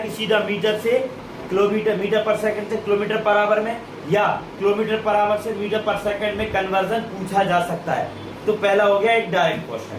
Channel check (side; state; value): both; identical; correlation 1.00